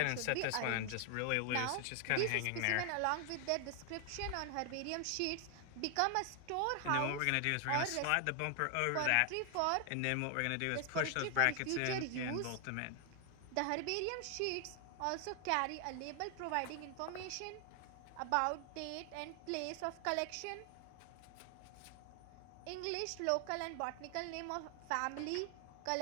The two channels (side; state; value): both; different; correlation 0.00